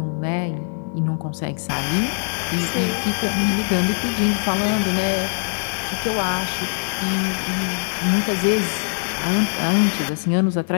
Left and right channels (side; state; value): right; silent; digital silence